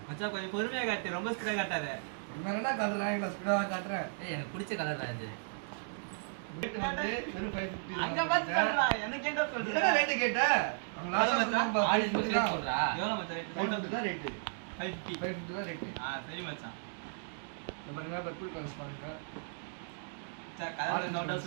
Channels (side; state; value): left; silent; digital silence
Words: மச்சான் கொஞ்சம் பொறுமையா காட்டு, ரொம்ப ஸ்பீடா காட்டாத. என்னடா காட்டுறேன், நான் ஸ்பீடா காட்டுறேன். எனக்கு பிடிச்ச கலர் தான் இது. ரேட் வந்து வெறும் 550. அங்க பாத்துடா, எனக்கு என்ன சொல்ற? என்ன ரேட் கேட்ட? அவங்க லாஸ்ட் சொன்னாங்க ஆலிஸ் ரேட் சொல்றா. எவ்வளவு மச்சான் ரேட்? 550 தான் ரேட். 550 தான் ரேட். சரி மச்சான். இந்த பாருங்க பர்பிள் கலர்ஸ் பாருங்க. மச்சான் கலர் நோட்டா